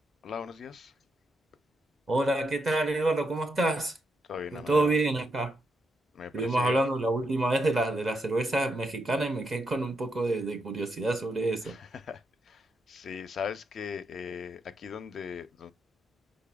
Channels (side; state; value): both; normal; correlation 0.81